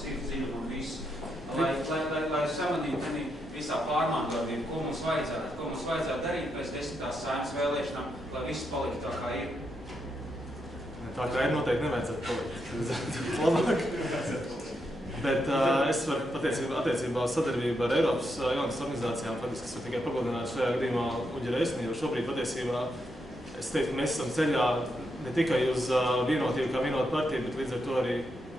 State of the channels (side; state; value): both; normal; correlation 0.82